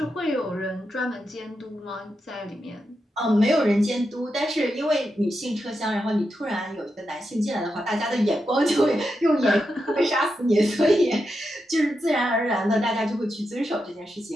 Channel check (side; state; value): both; normal; correlation 0.87